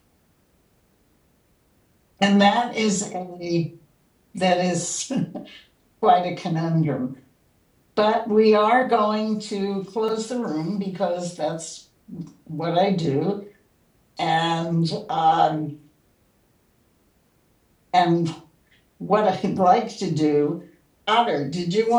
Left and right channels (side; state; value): both; identical; correlation 1.00